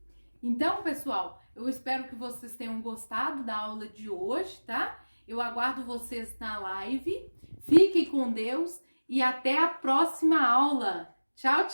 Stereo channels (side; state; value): both; inverted; correlation -1.00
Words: Então, pessoal, eu espero que vocês tenham gostado da aula de hoje, tá? Eu aguardo vocês na live. Fiquem com Deus e até a próxima aula. Tchau,